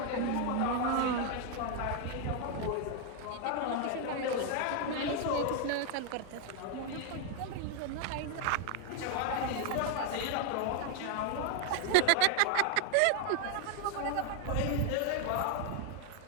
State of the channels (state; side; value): different; both; correlation 0.00